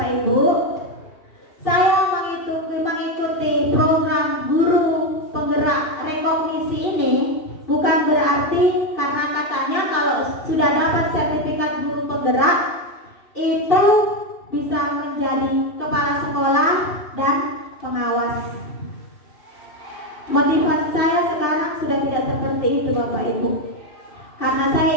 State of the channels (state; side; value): late; right; 2.7 ms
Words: Ibu, saya mengikuti program guru penggerak rekognisi ini bukan berarti karena katanya kalau sudah dapat sertifikat guru penggerak itu bisa menjadi kepala sekolah dan pengawas. Motivasi saya sekarang sudah tidak seperti itu, Bapak Ibu. Karena saya